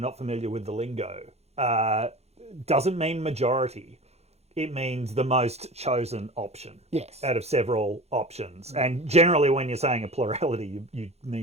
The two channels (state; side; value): late; left; 0.31 ms